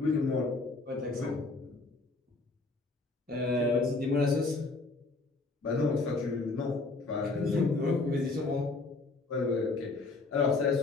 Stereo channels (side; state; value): right; quieter; 3.5 dB